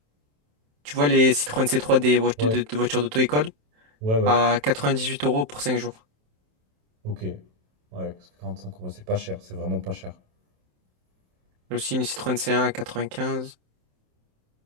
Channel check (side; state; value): left; late; 27 ms